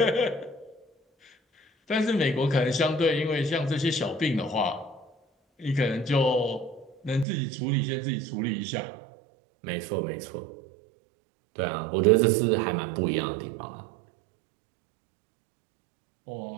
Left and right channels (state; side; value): drops out; left; at 7.2 s